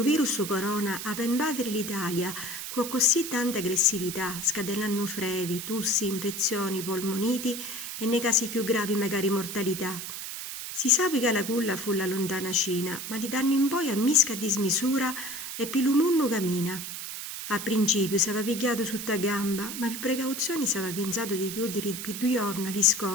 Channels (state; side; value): noise; right; hiss, 7 dB below the sound